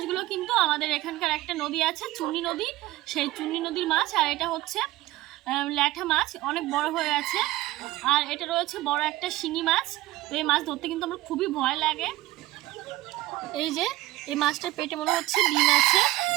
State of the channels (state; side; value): quieter; left; 17.2 dB